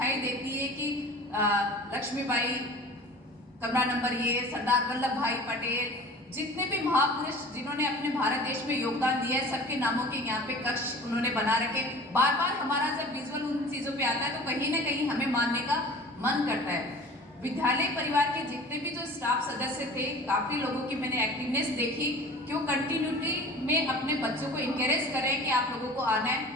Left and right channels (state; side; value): normal; both; correlation 0.42